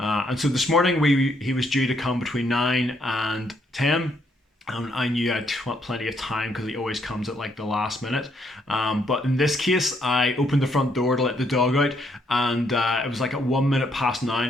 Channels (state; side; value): normal; both; correlation 0.72